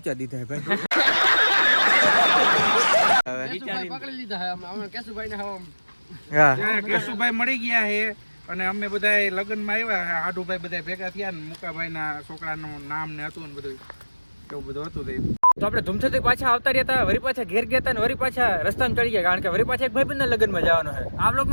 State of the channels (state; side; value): inverted; both; correlation -1.00